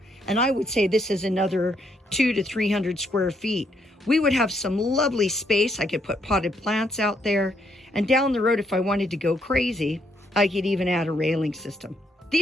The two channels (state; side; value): normal; both; correlation 0.74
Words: and I would say this is another 200 to 300 square feet, we would have some lovely space. I could put potted plants out there. And down the road, if I wanted to go crazy, I could even add a railing system.